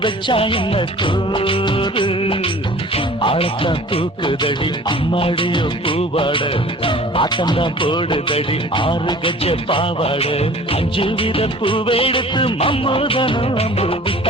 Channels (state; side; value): normal; both; correlation 0.46